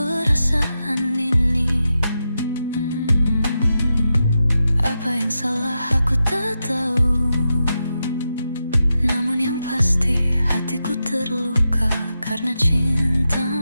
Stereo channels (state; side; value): inverted; both; correlation -0.88